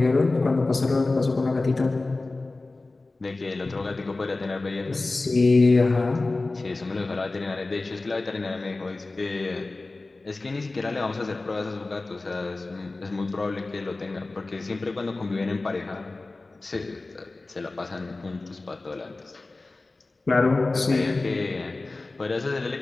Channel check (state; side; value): quieter; right; 3.3 dB